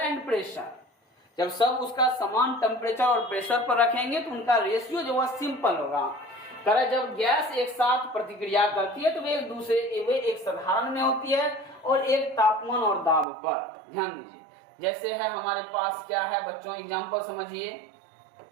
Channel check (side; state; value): left; drops out; at 13.2 s